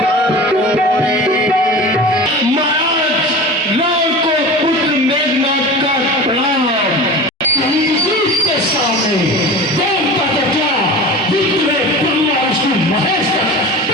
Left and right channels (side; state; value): both; normal; correlation 0.34